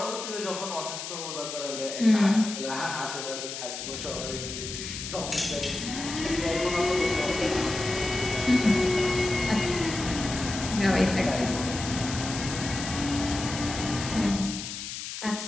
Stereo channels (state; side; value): noise; left; hiss, 7 dB below the sound